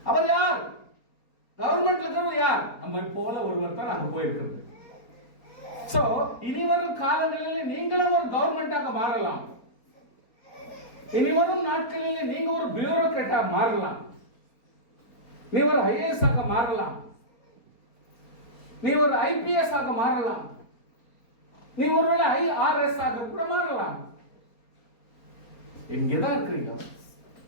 அவர் யார்? கவர்மெண்ட்ல இருக்கிறது யார்? நம்ம போல ஒருவர் தான் அங்க போயிருக்கிறது. சோ இனி வரும் காலங்களில் நீங்களும் ஒரு கவர்மெண்டாக மாறலாம். இனி வரும் நாட்களில் நீங்க ஒரு பியூரோக்ராட்டா மாறலாம், நீ ஒரு ஐஏஎஸ் ஆக மாறலாம், நீ ஒரு ஐபிஎஸ் ஆக மாறலாம், நீ ஒருவேளை ஐஆர்எஸ் ஆக கூட மாறலாம். இங்கதான் இருக்கிறீங்க.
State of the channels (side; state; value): right; late; 4.3 ms